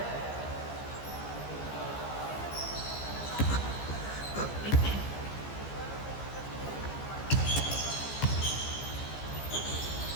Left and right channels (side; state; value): right; late; 15 ms